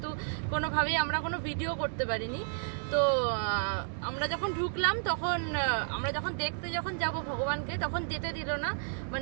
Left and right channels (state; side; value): silent; left; digital silence